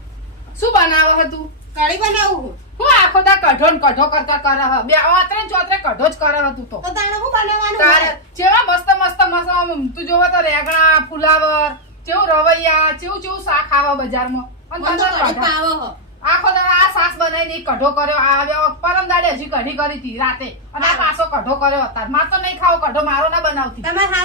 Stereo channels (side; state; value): both; normal; correlation -0.04